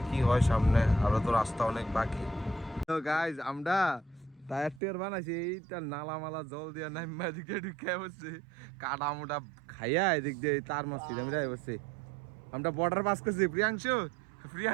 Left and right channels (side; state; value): left; drops out; at 4.8 s